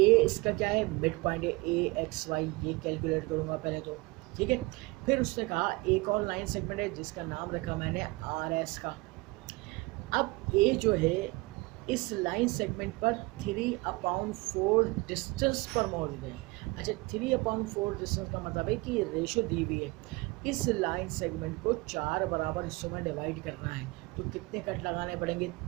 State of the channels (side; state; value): left; quieter; 23.8 dB